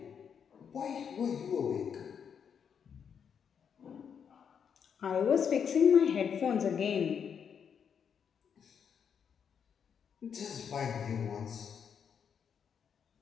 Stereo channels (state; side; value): quieter; right; 7.3 dB